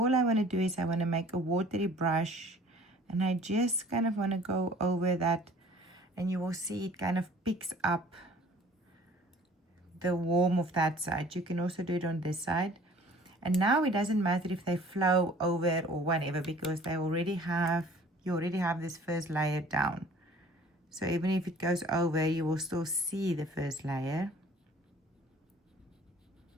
I want to do is I want to make a watery brush, and I just kind of want to go over that, and you will see it kind of picks up the warmth of that side. You can also do it on this side. And now it doesn't matter if they flow over or whatever, because you already have this first layer down. So even if it goes over, you will still see the first layer.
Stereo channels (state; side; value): normal; both; correlation 0.51